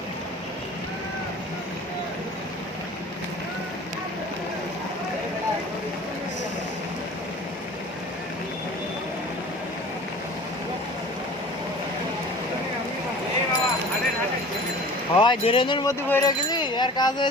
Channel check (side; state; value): both; normal; correlation 0.43